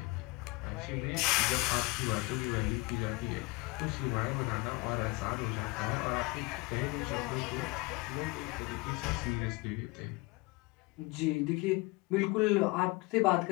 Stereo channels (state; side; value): quieter; right; 24.9 dB